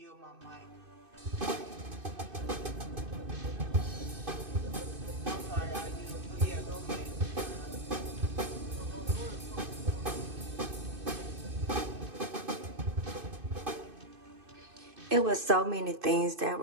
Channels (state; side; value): late; left; 2.6 ms